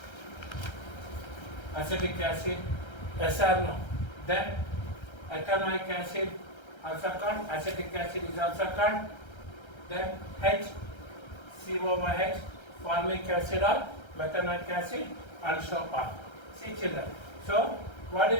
SRNO. Then ethanoic acid, also called acetic acid, is also called. Then HCOOH, formic acid or methanoic acid, and so on. See children. So, what do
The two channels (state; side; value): late; right; 1.3 ms